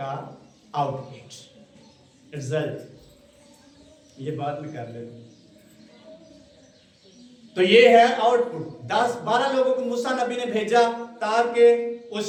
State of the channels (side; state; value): both; identical; correlation 1.00